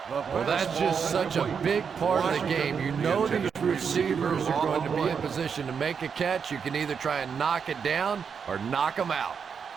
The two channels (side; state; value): left; quieter; 6.5 dB